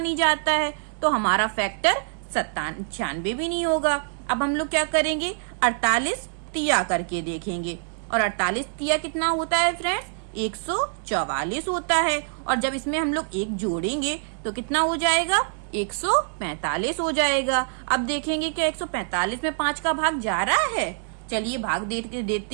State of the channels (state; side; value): silent; left; 62 dB below the other